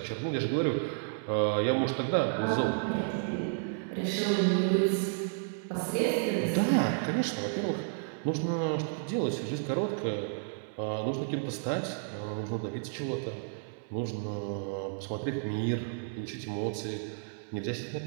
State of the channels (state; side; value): silent; left; digital silence